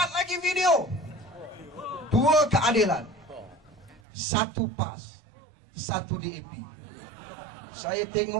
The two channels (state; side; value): drops out; left; at 4.0 s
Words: lagi video. 2 keadilan, 1 PAS, 1 DAP. Saya